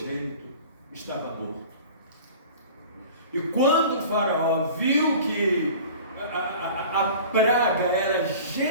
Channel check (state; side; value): inverted; both; correlation -0.42